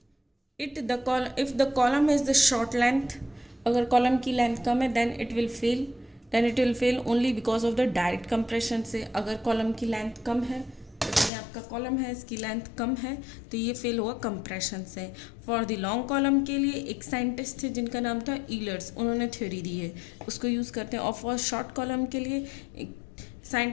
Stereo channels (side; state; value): right; drops out; at 11.3 s